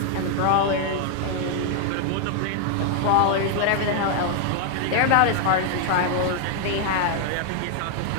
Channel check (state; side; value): different; both; correlation 0.00